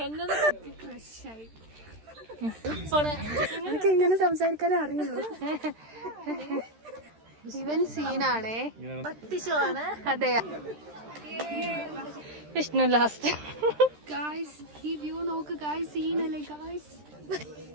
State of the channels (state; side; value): late; left; 13 ms